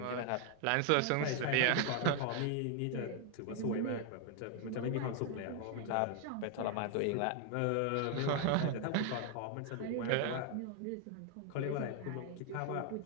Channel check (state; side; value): different; both; correlation 0.00